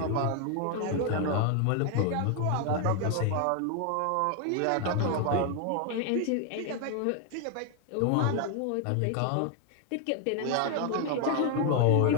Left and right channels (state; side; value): different; both; correlation 0.00